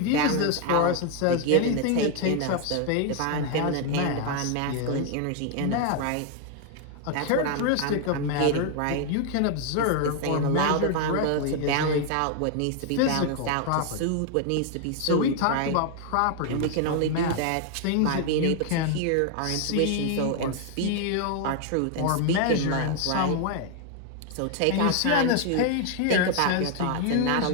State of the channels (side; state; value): both; different; correlation 0.00